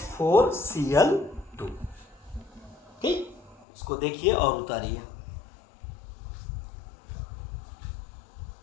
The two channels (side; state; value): right; drops out; at 3.7 s